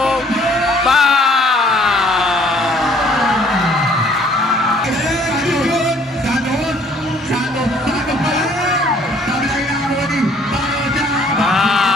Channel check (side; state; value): both; normal; correlation 0.59